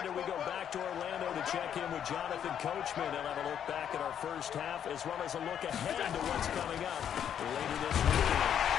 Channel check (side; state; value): right; quieter; 9.1 dB